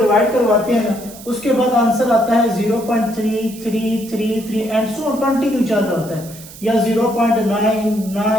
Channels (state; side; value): noise; right; hiss, 17 dB below the sound